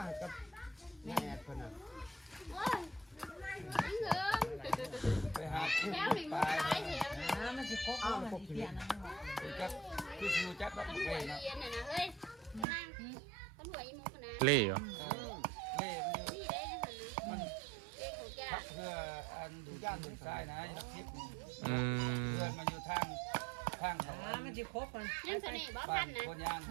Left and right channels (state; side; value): drops out; left; at 12.7 s